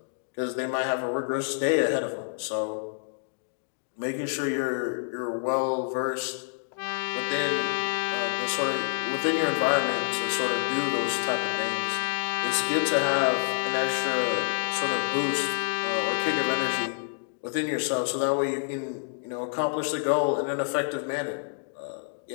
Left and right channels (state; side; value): silent; right; digital silence